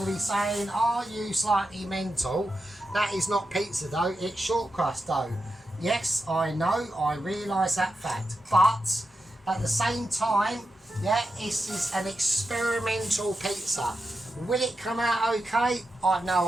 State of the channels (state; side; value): normal; both; correlation 0.89